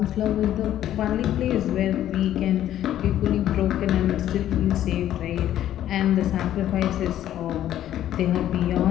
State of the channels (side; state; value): right; quieter; 12.0 dB